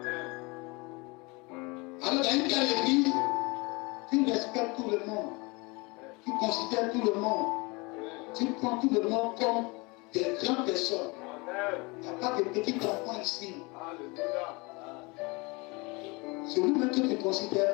Alors, dans une telle église, tu respectes tout le monde, tu considères tout le monde, tu prends tout le monde comme des grandes personnes. Il n'y a pas de petits enfants ici. Alléluia. Celui-même que tu ne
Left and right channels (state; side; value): quieter; right; 26.9 dB